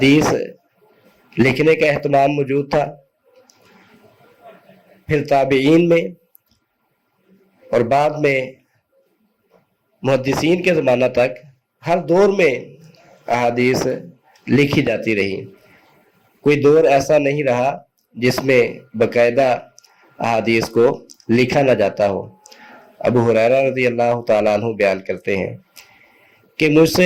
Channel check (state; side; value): identical; both; correlation 1.00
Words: لکھنے کا اہتمام موجود تھا، پھر تابعین میں، اور بعد میں محدثین کے زمانہ تک ہر دور میں احادیث لکھی جاتی رہی۔ کوئی دور ایسا نہیں رہا جس میں باقاعدہ احادیث کو لکھا نہ جاتا ہو۔ ابو ہریرہ رضی اللہ تعالیٰ عنہ بیان کرتے ہیں کہ مجھ